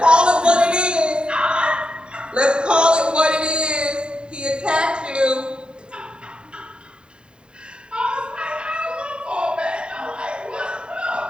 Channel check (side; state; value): left; late; 0.050 ms